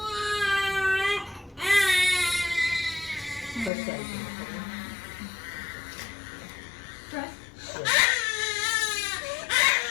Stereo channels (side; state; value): right; drops out; at 3.7 s